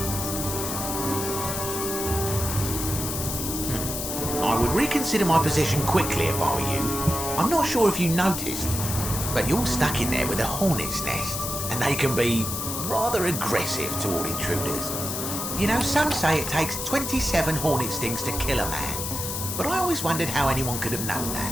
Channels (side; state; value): left; noise; hiss, 4 dB below the sound